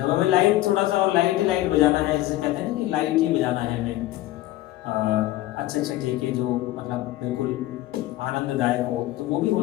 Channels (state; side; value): quieter; right; 15.9 dB